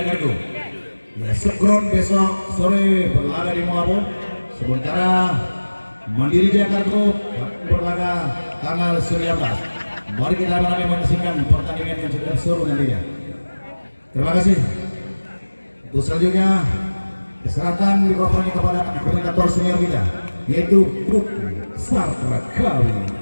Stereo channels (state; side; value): inverted; both; correlation -1.00